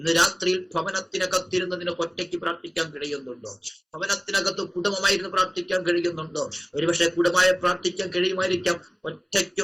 രാത്രിയിൽ ഭവനത്തിനകത്തിരുന്നതിന് ഒറ്റയ്ക്ക് പ്രാർത്ഥിക്കാൻ കഴിയുന്നുണ്ടോ? ഭവനത്തിനകത്ത് കുടുംബമായിരുന്നു പ്രാർത്ഥിക്കാൻ കഴിയുന്നുണ്ടോ? ഒരുപക്ഷെ കുടുംബമായി പ്രാർത്ഥിക്കാൻ കഴിയുമായിരിക്കാം. ഒറ്റയ്ക്ക്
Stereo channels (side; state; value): both; identical; correlation 1.00